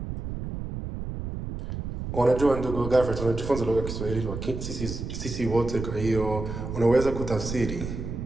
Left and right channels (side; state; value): right; noise; rumble, 6 dB below the sound